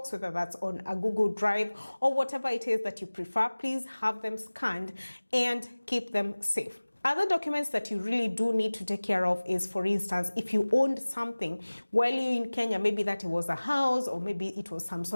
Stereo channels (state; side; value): inverted; both; correlation -1.00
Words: whether that's on a Google Drive, or whatever it is that you prefer. Please have them scanned and keep them safe. Other documents that you really do need to take care of is, for instance, if you owned something while you're in Kenya, maybe that it was a house, or maybe it was some